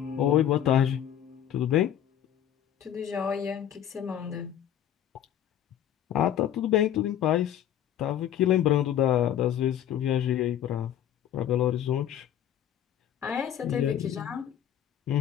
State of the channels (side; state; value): right; quieter; 10.5 dB